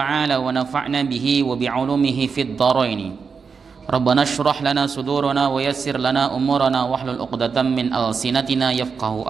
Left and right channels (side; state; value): left; quieter; 5.6 dB